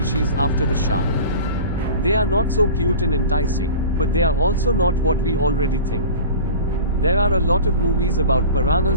after the shark. They are not so cute and enticing, but they are also not what we already think. There are a lot of movies about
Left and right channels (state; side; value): inverted; both; correlation -0.37